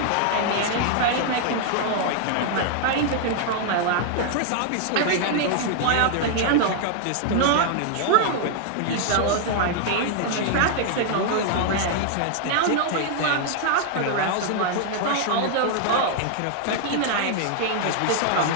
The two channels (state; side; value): different; both; correlation 0.00